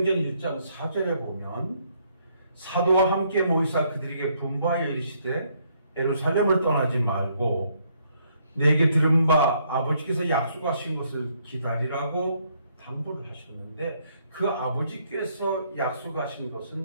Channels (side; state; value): both; inverted; correlation -0.70